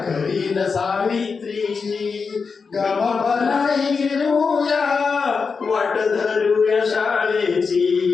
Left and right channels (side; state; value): right; quieter; 5.1 dB